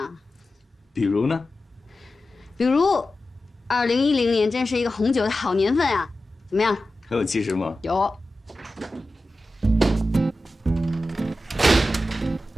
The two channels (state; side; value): normal; both; correlation 0.93